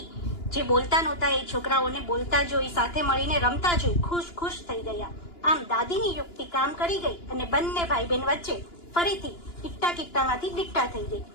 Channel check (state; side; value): late; right; 2.9 ms